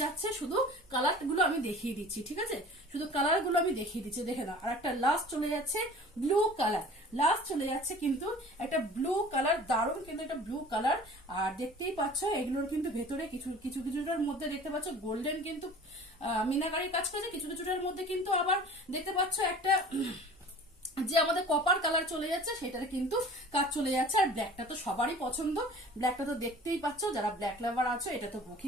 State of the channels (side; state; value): both; normal; correlation 0.44